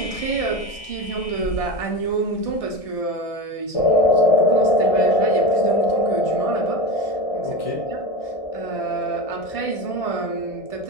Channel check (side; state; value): right; late; 1.6 ms